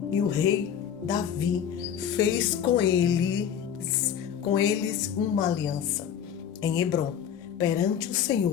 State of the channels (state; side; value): quieter; right; 8.7 dB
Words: e o rei Davi fez com eles uma aliança em Hebrom, perante o